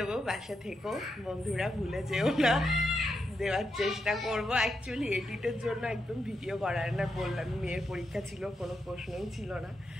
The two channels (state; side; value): normal; both; correlation 0.84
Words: পাশে থেকো বন্ধুরা, ভুলে যেও না। দেওয়ার চেষ্টা করবো। অ্যাকচুয়ালি এডিটের জন্য একদম ভিডিও করার না, বললাম মেয়ের পরীক্ষা ছিল, কোনো প্রশ্নই ছিল না।